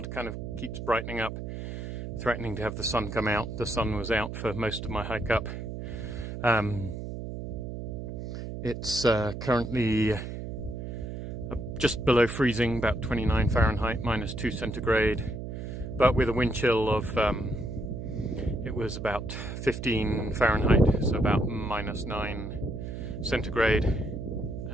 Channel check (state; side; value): noise; right; hum, 7 dB below the sound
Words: kind of keeps brightening up, threatening to have the sun come out. The sun was out for most of my hike up. It's currently just below freezing, about 29 Fahrenheit, -2 centigrade, but with a wind chill of, it was about 15 Fahrenheit, so about -9 centigrade.